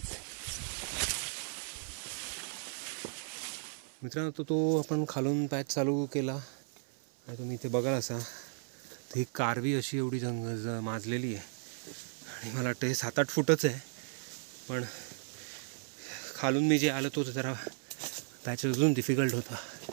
मित्रांनो, तो आपण खालून पॅच चालू केला आणि तुम्ही इथे बघाल असा ती कारवी अशी एवढी माजलेली आहे आणि मला वाटतं हे 7-8 फूटच आहे. पण खालून मी जे आलो तो जरा पॅच अजून डिफिकल्ट होता.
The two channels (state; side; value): silent; left; 54 dB below the other